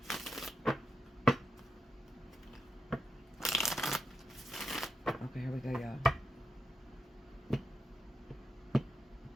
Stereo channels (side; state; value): both; normal; correlation 0.85